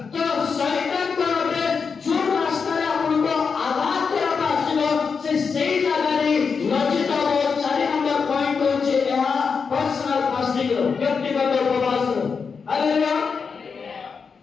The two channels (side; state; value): right; quieter; 5.6 dB